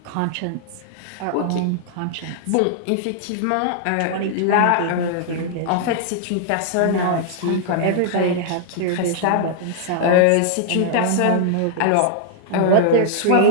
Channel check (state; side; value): different; both; correlation -0.01